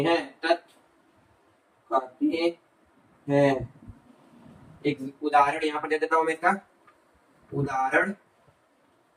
तत्व कहते हैं। एक उदाहरण यहां पर दे देता हूं मैं इसका। उदाहरण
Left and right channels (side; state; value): both; identical; correlation 1.00